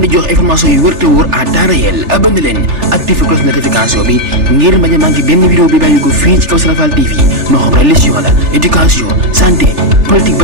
di jox information yu wër te wóor à temps réel. abonné leen activé cloche notification bi ngir bañ a manqué benn vidéo bi bàyyi ko fii ci Kawsara Fall TV moo xam religion la éducation santé politique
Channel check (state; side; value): late; left; 3.4 ms